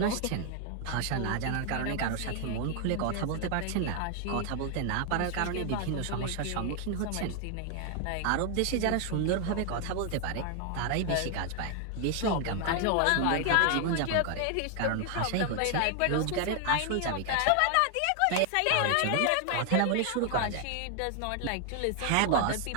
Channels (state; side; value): different; both; correlation 0.00